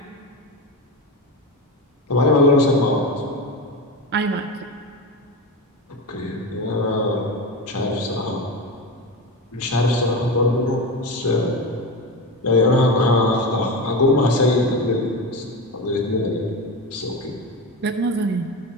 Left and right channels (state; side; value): normal; both; correlation 0.22